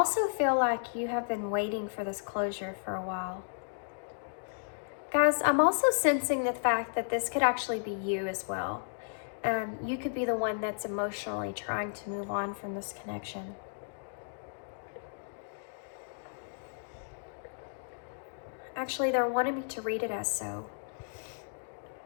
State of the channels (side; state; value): right; silent; digital silence